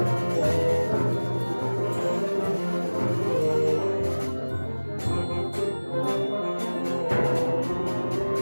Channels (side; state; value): both; inverted; correlation -1.00